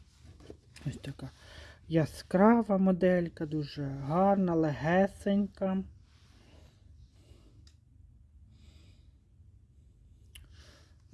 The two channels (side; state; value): both; identical; correlation 1.00